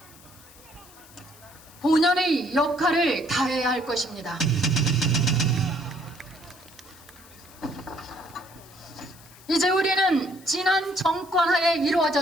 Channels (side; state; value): left; noise; hiss, 23 dB below the sound